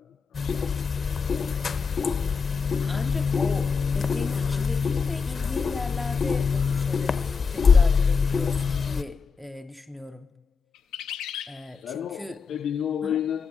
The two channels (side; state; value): right; quieter; 5.4 dB